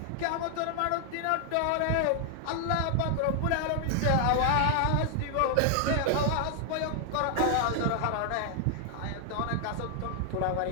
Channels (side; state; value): both; different; correlation 0.00